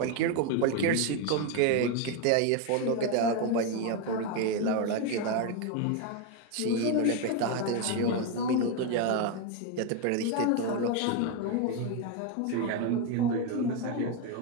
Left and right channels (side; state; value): both; different; correlation 0.02